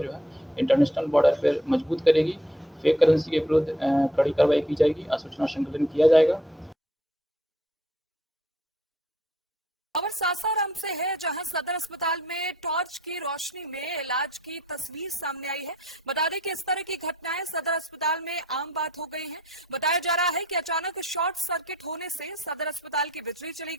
जो है इंटरनेशनल बॉर्डर पर मजबूत करेगी। फेक करेंसी के विरुद्ध कड़ी कार्रवाई की जाएगी, सूचना संकलन किया जाएगा। खबर सासाराम से है, जहां सदर अस्पताल में टॉर्च की रोशनी में इलाज की तस्वीर सामने आई है। बता दें कि इस तरह की घटनाएं सदर अस्पताल में आम बात हो गई हैं। बताया जा रहा है कि अचानक शॉर्ट सर्किट होने से सदर अस्पताल की बिजली चली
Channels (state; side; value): normal; both; correlation 0.63